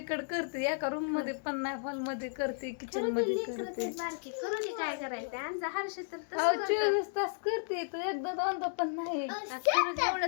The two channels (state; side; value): silent; right; digital silence